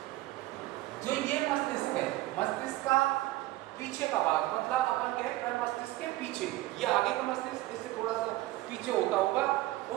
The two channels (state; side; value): quieter; left; 17.6 dB